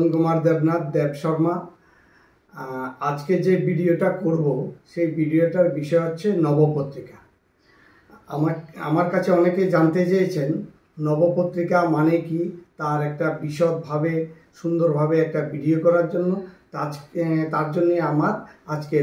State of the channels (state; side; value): identical; both; correlation 1.00